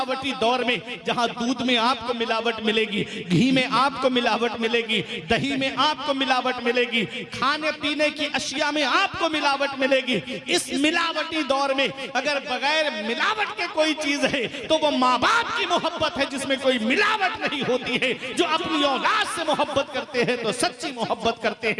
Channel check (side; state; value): both; identical; correlation 1.00